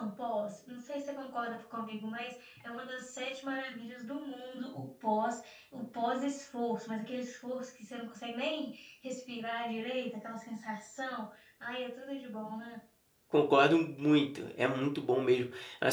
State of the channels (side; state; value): both; identical; correlation 1.00